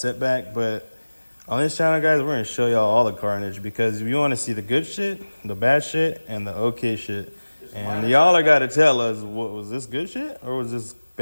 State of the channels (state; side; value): inverted; both; correlation -1.00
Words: But on this channel, guys, we're going to show y'all all the carnage, because if you want to see the good shit, the bad shit, and the okay shit. And y'all are got to tell us, what was this good shit, or was this